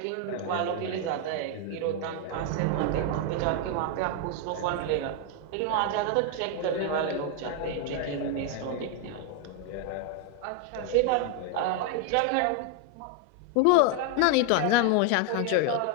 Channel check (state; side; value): different; both; correlation 0.00